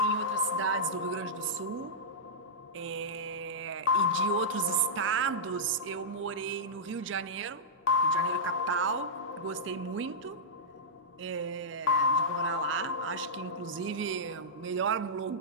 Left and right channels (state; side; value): normal; both; correlation -0.12